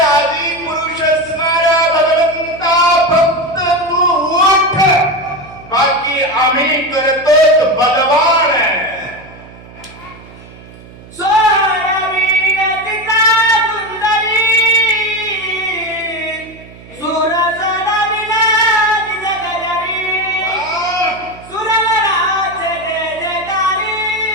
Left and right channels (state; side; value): noise; right; hum, 20 dB below the sound